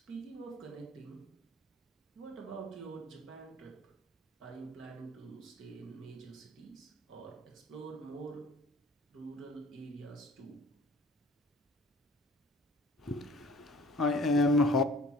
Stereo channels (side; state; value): both; normal; correlation 0.49